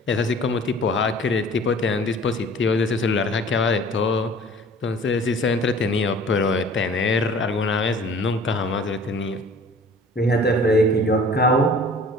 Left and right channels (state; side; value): normal; both; correlation 0.48